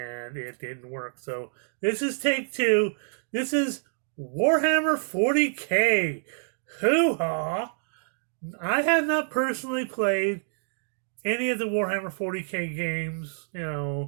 it didn't work. So this is take two. This is Warhammer 40K. Hoo-ha! I have not personally played any of the Warhammer 40K games,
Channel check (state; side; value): silent; left; digital silence